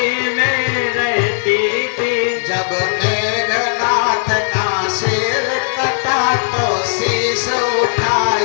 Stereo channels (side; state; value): right; silent; digital silence